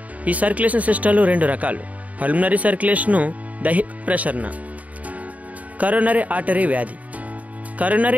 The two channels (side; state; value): left; late; 0.071 ms